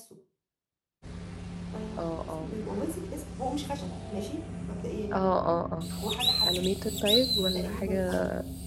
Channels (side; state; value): both; identical; correlation 1.00